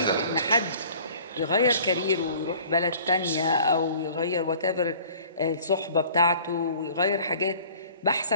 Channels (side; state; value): both; inverted; correlation -0.49